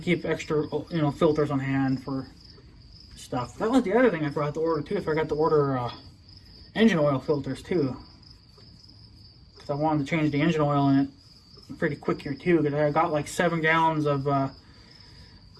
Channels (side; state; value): both; identical; correlation 1.00